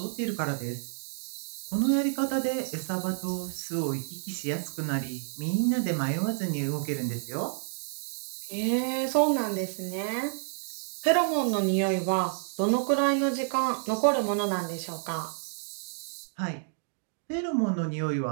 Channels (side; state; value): left; silent; digital silence